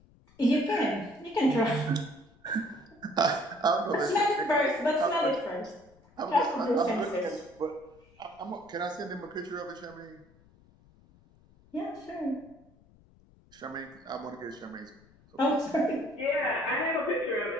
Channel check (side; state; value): left; noise; rumble, 28 dB below the sound